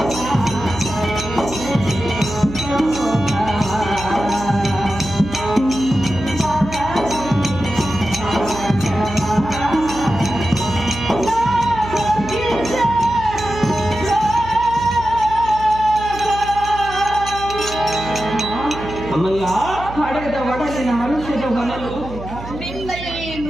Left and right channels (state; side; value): noise; right; hum, 12 dB below the sound